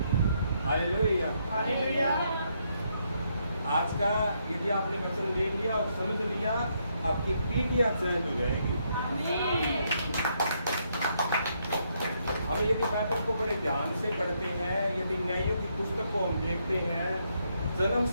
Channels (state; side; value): inverted; both; correlation -0.76